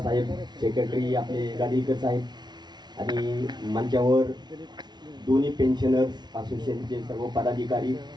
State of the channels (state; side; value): late; left; 0.20 ms